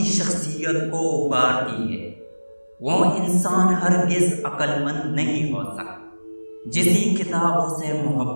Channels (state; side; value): inverted; both; correlation -1.00